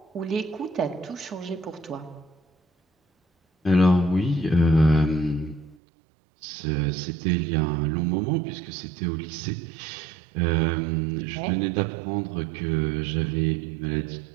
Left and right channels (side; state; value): left; drops out; at 5.8 s